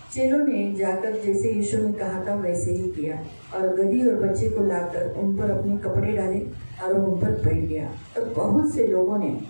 चेलों ने जाकर जैसे यीशु ने कहा था वैसे ही किया, और गधी और बच्चे को लाकर उन पर अपने कपड़े डाले और उन पर बैठ गया। तब बहुत से लोगों ने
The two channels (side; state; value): both; inverted; correlation -1.00